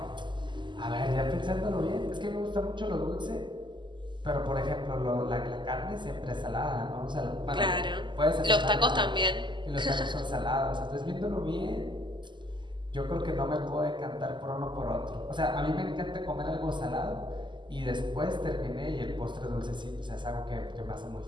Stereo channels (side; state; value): left; late; 0.22 ms